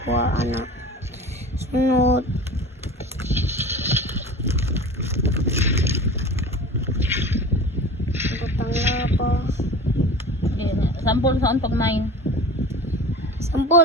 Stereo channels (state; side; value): normal; both; correlation 0.36